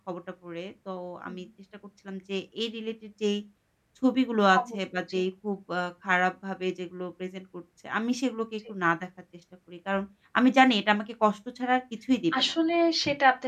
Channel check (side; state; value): both; identical; correlation 1.00